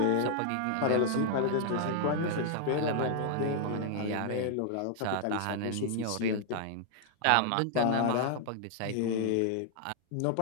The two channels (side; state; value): both; different; correlation 0.00